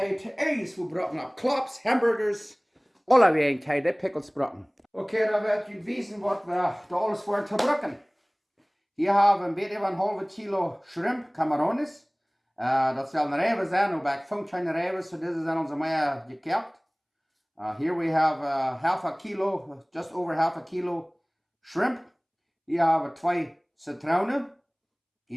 te eten voor brokken op klops, hamburgers, alle wegen kan je de pickles brokken. Oké, dan wil je weten wat we da alles voor te brokken. Hier hebben we een beetje van een halve kilo shrimp, camarones. Dat zullen rijven zijn, ook bij functionele rijven, so deze zijn onze maar gekeerd. Here we have half a kilo, just over half a kilo shrimp. Hier hebben we 2 citroenen.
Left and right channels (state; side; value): identical; both; correlation 1.00